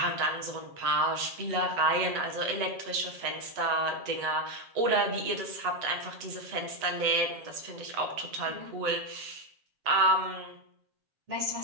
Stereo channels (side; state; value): left; late; 7.5 ms